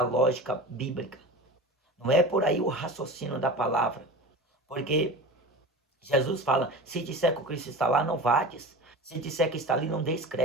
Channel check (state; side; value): normal; both; correlation 0.32